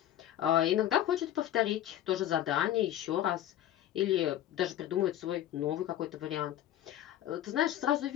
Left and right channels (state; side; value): quieter; right; 12.2 dB